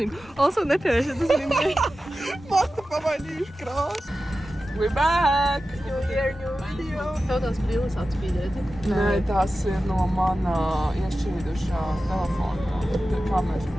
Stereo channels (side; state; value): both; normal; correlation 0.94